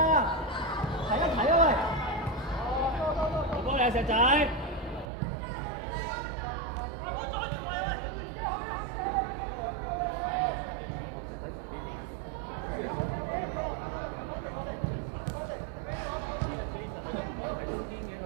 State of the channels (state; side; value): drops out; left; at 5.1 s